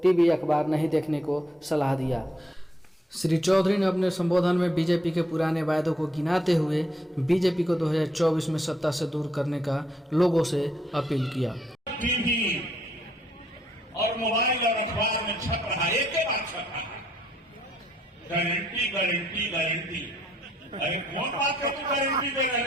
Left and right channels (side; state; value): both; normal; correlation 0.72